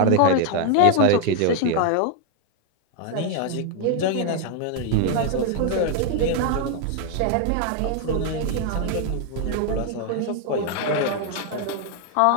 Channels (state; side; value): different; both; correlation 0.00